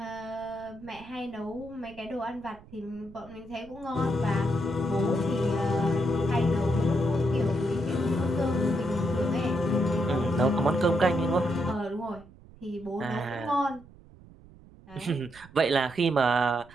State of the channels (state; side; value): noise; right; rumble, 22 dB below the sound